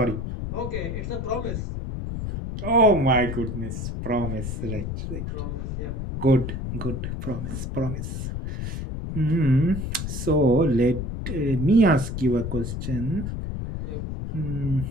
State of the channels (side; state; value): left; noise; rumble, 4 dB below the sound